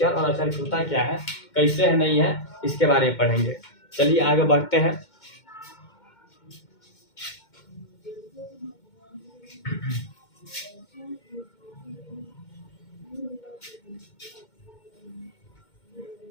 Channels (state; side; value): late; right; 2.2 ms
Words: और अचर होता क्या है, कैसे है, नहीं है, इसके बारे में पढ़ेंगे। चलिए आगे बढ़ते हैं।